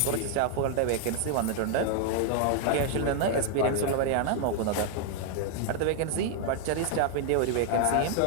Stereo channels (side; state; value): both; different; correlation 0.00